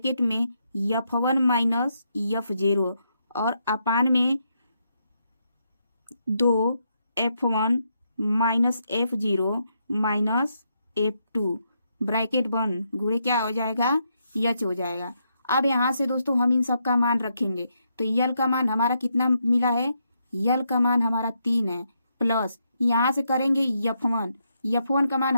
में F1 माइनस F0 और अपान में 2 F1 minus F0 minus F2 bracket बंद, गुणे क्या हो जाएगा? यच हो जाएगा। अब यहाँ से दोस्तों हम इन सब का मान रखेंगे। तो यल का मान हमारा कितना मिला है? यल का मान हमारा 3 है। प्लस यहाँ से करेंगे F1 का मान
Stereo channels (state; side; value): inverted; both; correlation -0.79